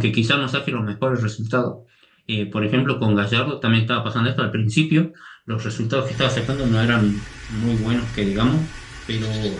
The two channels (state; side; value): identical; both; correlation 1.00